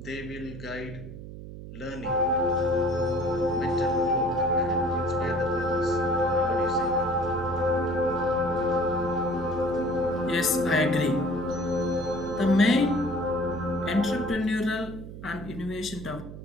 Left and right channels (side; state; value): right; noise; hum, 12 dB below the sound